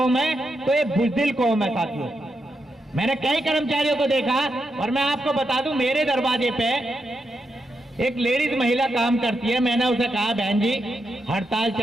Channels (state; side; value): normal; both; correlation 0.84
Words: है तो ये बुजदिल कौम है साथियों। मैंने कई कर्मचारियों को देखा और मैं आपको बता दूं, मेरे दरवाजे पे एक लेडीज महिला काम करती है। मैंने उसे कहा, बहन जी हड़ताल